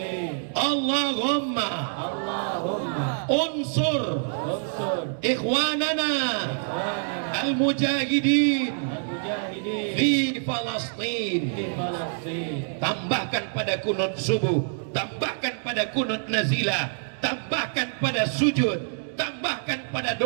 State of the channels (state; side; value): silent; left; digital silence